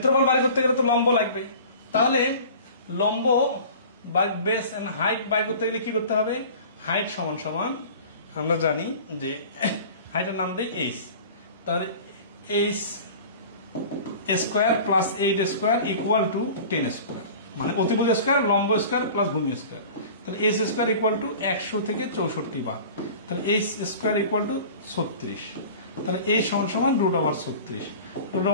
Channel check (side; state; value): both; inverted; correlation -0.41